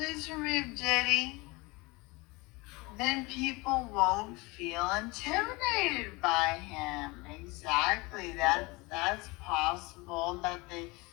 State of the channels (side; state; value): right; quieter; 24.6 dB